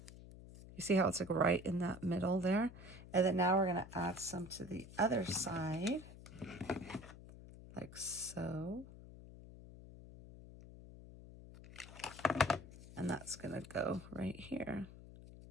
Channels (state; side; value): noise; left; hum, 16 dB below the sound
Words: you see how it's like right in that middle there? And then now we're going to add some to the other side, like so. And that's going to go right here.